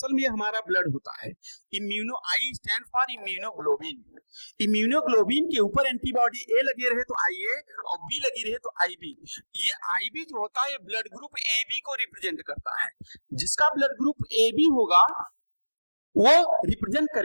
में हमारा ब्लड होता है, immuno, I stand for immunoglobulin. Immunoglobulin के ऊपर एंटीबॉडी ए लगे रहे तो आई ए और बी लगी रहे तो आई बी। ये आई बी जो होता है ये ब्लड ग्रुप ए बी को रिप्रेजेंट करता है। जिसका ब्लड ग्रुप ए बी होगा वो रिप्रेजेंट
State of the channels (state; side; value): inverted; both; correlation -1.00